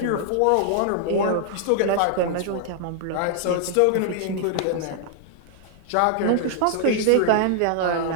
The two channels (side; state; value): both; different; correlation -0.01